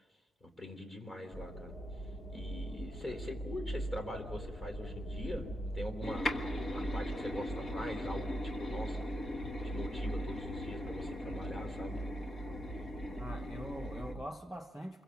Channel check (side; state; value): both; normal; correlation 0.84